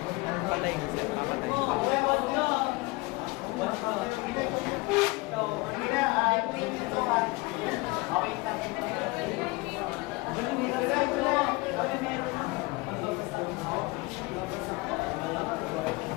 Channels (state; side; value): quieter; right; 23.8 dB